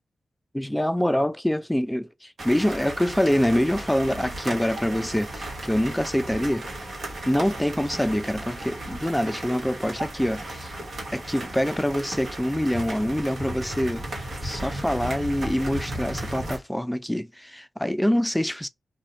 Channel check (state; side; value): normal; both; correlation 0.98